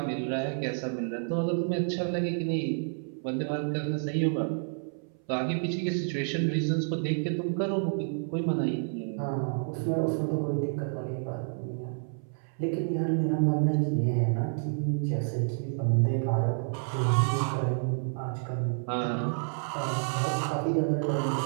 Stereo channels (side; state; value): left; silent; 58 dB below the other